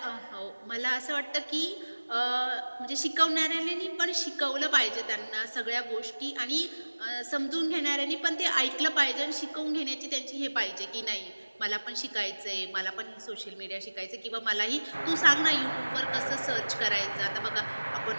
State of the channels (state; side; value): inverted; both; correlation -1.00